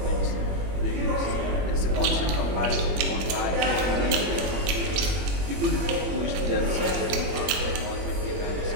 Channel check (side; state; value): left; late; 21 ms